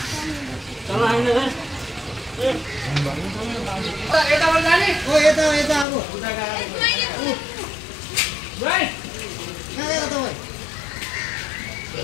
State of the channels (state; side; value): drops out; right; at 5.9 s